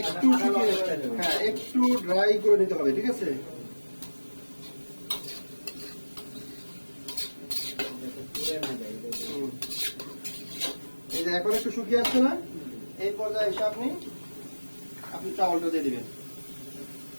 শুকিয়ে, হ্যাঁ, একটু ড্রাই করে নিতে হবে, ঠিক আছে? এই যে এখন একটু শুকিয়ে আসছে না, এই পর্যায়ে এসে আপনি চাউলটা দিয়ে দিবেন।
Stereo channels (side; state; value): both; inverted; correlation -1.00